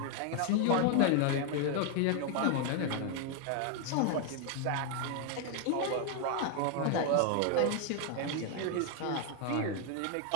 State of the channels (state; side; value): different; both; correlation 0.00